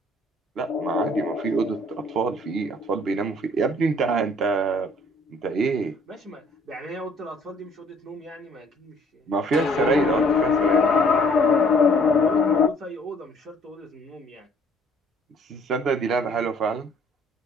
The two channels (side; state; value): both; normal; correlation 0.59